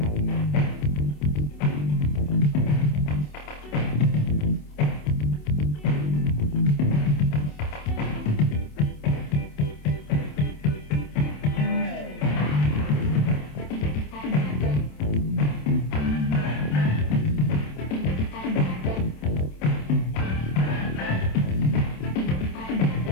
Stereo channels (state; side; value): late; right; 27 ms